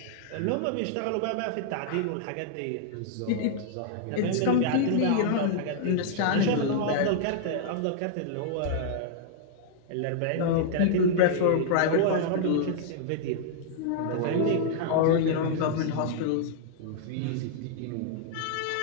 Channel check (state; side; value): different; both; correlation -0.01